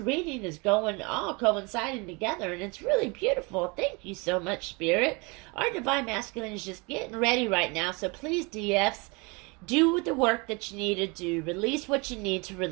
is going all coinciding together, and it's really beautiful. Thank you so much, Spirit. Our divine masculine is just getting ready right now. So please, DFs, do the work that you need to do. Release what you need to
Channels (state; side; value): quieter; left; 28.5 dB